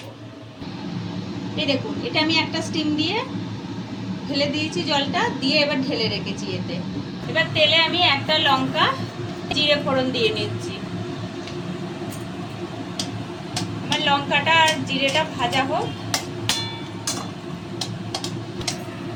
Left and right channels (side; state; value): both; identical; correlation 1.00